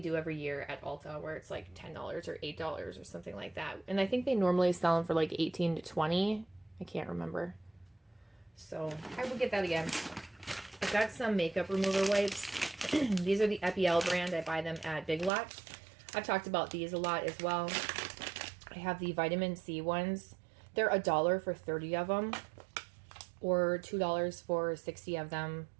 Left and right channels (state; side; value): drops out; left; at 15.3 s